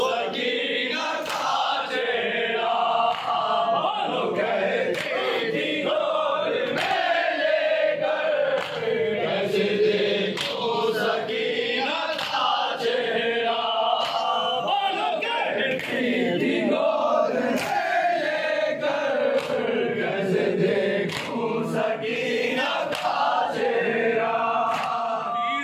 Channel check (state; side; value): identical; both; correlation 1.00